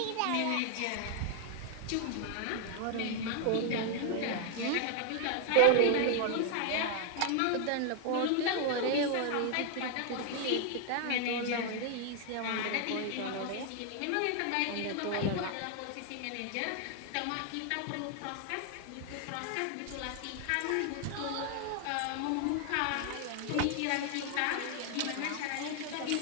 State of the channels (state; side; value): different; both; correlation 0.00